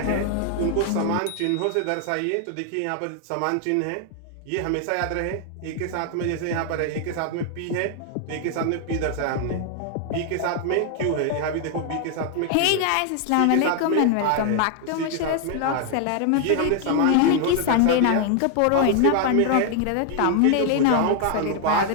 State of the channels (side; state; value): both; different; correlation 0.00